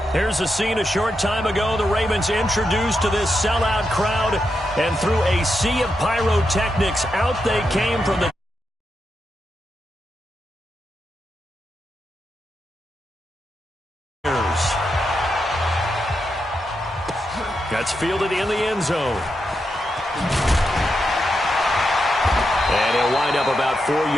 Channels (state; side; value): normal; both; correlation 0.85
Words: Here's a scene a short time ago. The Ravens introduced to this sellout crowd, and through a sea of pyrotechnics, out they came from the That's fielded in the end zone. And he'll wind up about 4